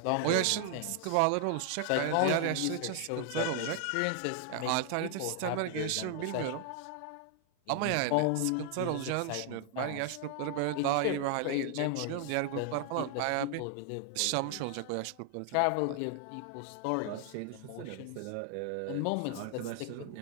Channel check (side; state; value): both; different; correlation 0.00